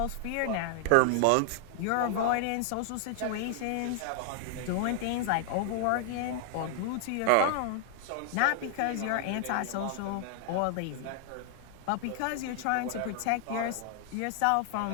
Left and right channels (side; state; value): both; different; correlation 0.00